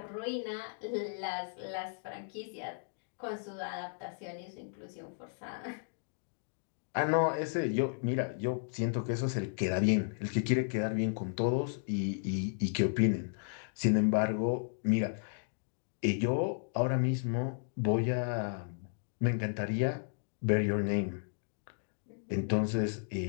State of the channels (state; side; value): silent; right; digital silence